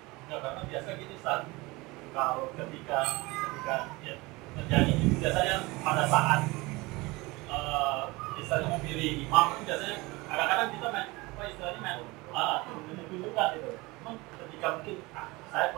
Ya, karena biasa gini Ustaz, kalau ketika ya, terjadi itu biasanya pada saat misalnya memilih imam itu biasanya kadang-kadang kita main tunjukkan gitu. Memang ketika mungkin saya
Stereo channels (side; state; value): left; quieter; 23.1 dB